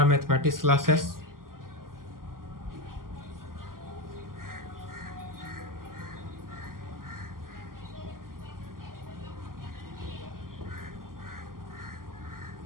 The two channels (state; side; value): late; left; 0.91 ms